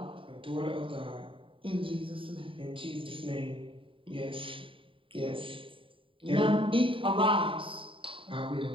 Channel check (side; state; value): left; late; 0.25 ms